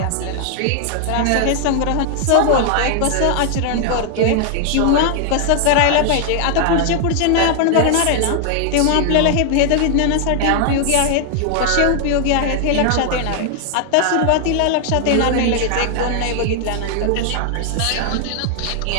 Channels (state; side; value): different; both; correlation 0.00